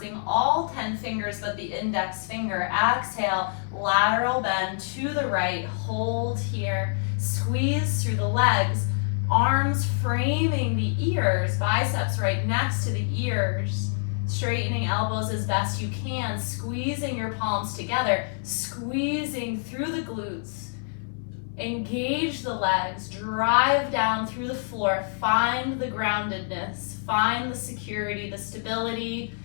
all 10 fingers but the index finger. Exhale, lateral bend to the right. Hold here. Squeeze through the legs. Arms framing the ears, biceps right next to the ears. Straightening elbows as best you can, squeezing your palms together, squeezing through the glutes. Engage the legs, drive down through the floor, find the groundedness, find the security, the stability,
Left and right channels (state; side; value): silent; right; 61 dB below the other